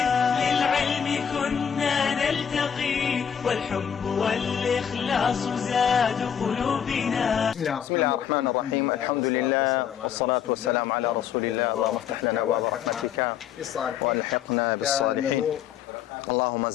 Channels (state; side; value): quieter; right; 8.4 dB